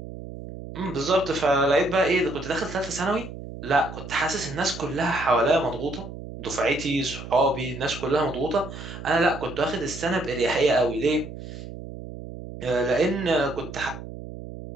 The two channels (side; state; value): right; noise; hum, 11 dB below the sound